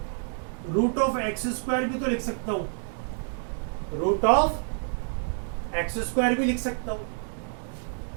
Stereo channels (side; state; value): left; silent; 59 dB below the other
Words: रूट ऑफ एक्स स्क्वायर भी तो लिख सकता हूं, रूट ऑफ एक्स स्क्वायर भी लिख सकता हूं,